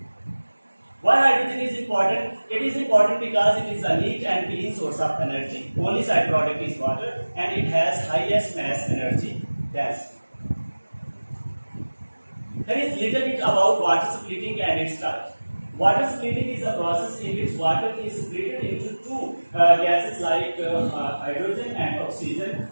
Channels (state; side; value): inverted; both; correlation -1.00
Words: Why hydrogen is important? It is important because it is a neat and clean source of energy. Only side product is water and it has highest mass energy. Yes. There is little bit about water splitting and its types. Water splitting is a process in which water is split into two gases like hydrogen and oxygen